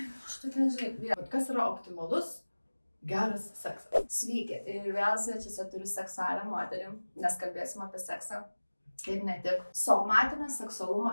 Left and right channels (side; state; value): both; inverted; correlation -1.00